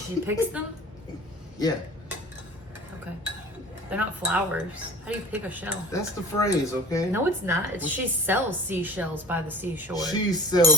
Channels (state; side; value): normal; both; correlation 0.41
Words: picks them? Yeah, Okay. They're not flowers. How do you pick a shell? that's the phrase, okay? No, it's not. It's she sells seashells by the seashore. She